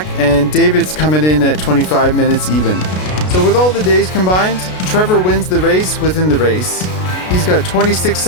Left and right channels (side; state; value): right; late; 33 ms